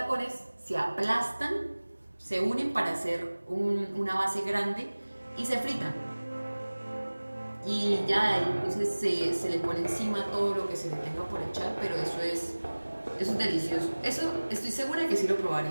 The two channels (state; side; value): inverted; both; correlation -1.00